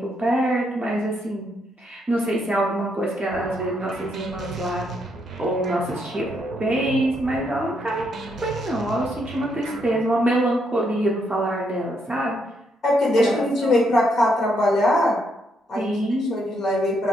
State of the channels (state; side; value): normal; both; correlation 0.76